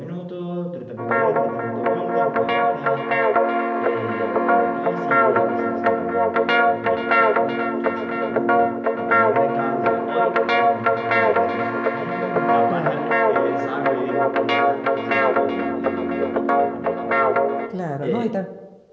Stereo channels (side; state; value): both; identical; correlation 1.00